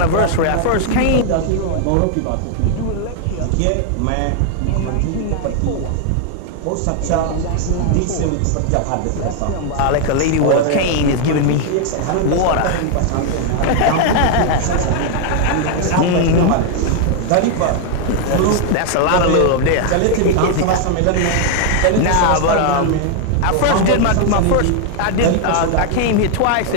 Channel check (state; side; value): different; both; correlation 0.00